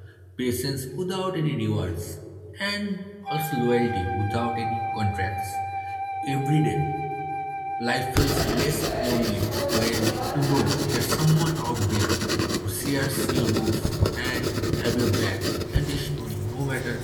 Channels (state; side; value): identical; both; correlation 1.00